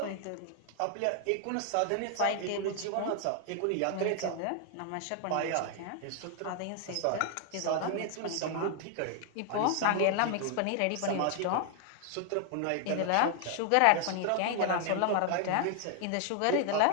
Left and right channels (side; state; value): both; different; correlation 0.00